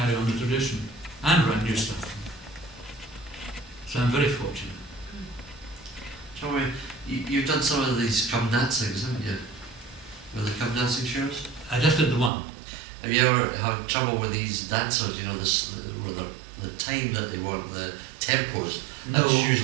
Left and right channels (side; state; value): left; drops out; at 12.3 s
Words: on the tradition and write new stuff. So I'm very fortunate. Joey, you've done some of these come dancings, haven't you? With the come dancing shows? I just did the one. Have you ever had trouble with these dancers, you know, with the time that they want, the tempos? No. That's